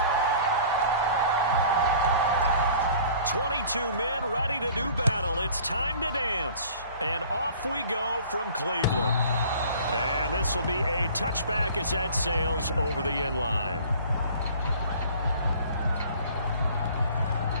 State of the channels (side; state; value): both; inverted; correlation -0.48